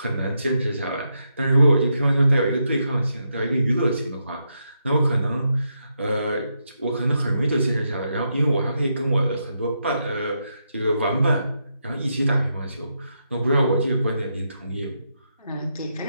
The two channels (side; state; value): both; inverted; correlation -0.82